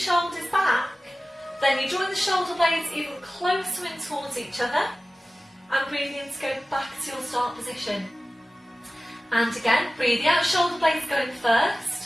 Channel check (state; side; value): normal; both; correlation 0.96